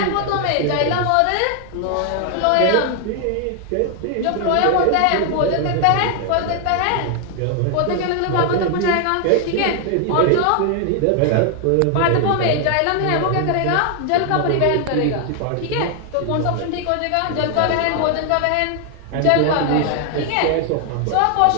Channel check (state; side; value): different; both; correlation 0.00